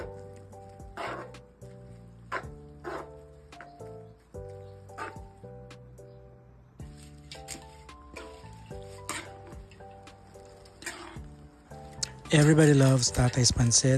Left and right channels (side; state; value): both; identical; correlation 1.00